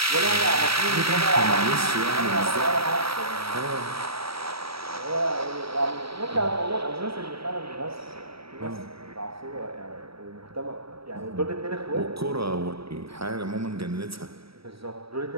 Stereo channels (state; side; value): late; left; 0.76 ms